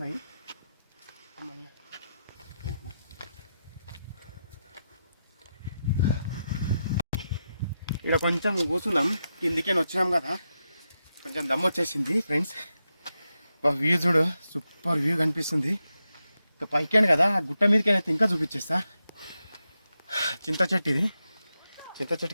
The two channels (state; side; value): inverted; both; correlation -0.88